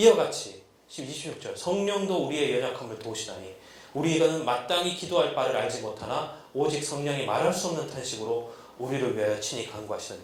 같이 26절 성령도 우리의 연약함을 도우시다니 우리는 마땅히 기도할 바를 알지 못하나 오직 성령이 말할 수 없는 탄식으로 우리를 위하여 친히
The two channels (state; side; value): identical; both; correlation 1.00